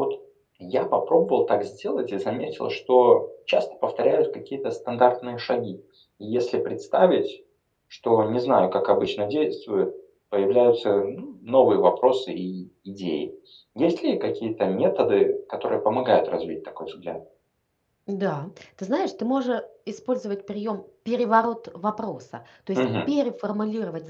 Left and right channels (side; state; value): both; identical; correlation 1.00